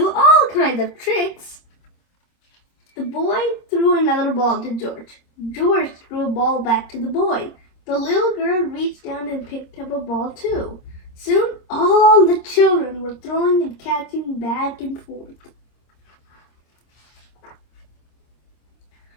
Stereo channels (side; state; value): right; late; 26 ms